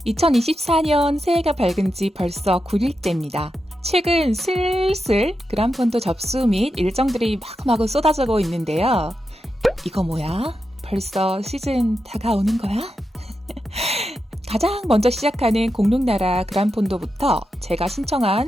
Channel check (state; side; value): normal; both; correlation 0.88